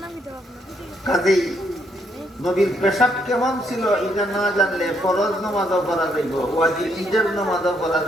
কাজেই নবীর পেশাব কেমন ছিল এটা না জানলে ফরজ নামাজও পড়া যাইব, ওয়াজিব ঈদের নামাজও পড়া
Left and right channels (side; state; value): both; normal; correlation 0.73